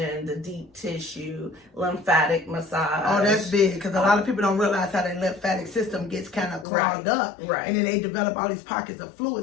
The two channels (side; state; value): right; drops out; at 6.7 s